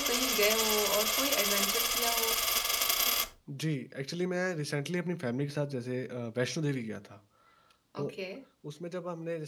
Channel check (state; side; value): identical; both; correlation 1.00